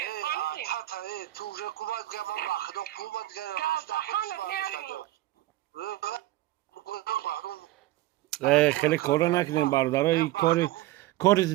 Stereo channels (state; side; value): quieter; left; 16.4 dB